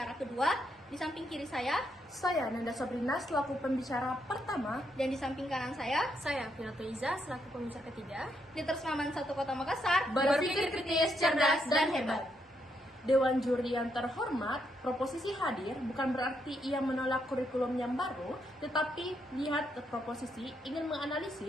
kedua, di samping kiri saya Nanda Sabrina selaku pembicara pertama, dan di samping kanan saya Finato Iza selaku pembicara ketiga. Detersma Man 1 Kota Makassar berpikir kritis, cerdas, dan hebat. Dewan Juri yang terhormat, proposisi hadir bukan berarti ia menolak kurikulum yang baru, tetapi lihat proposisi ingin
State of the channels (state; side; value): normal; both; correlation 0.77